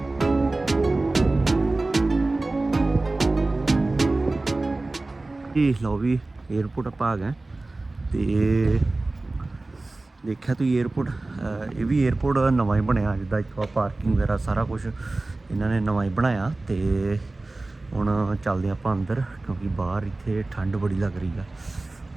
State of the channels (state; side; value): quieter; left; 3.1 dB